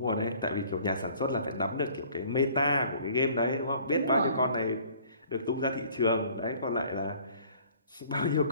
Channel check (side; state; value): both; inverted; correlation -0.54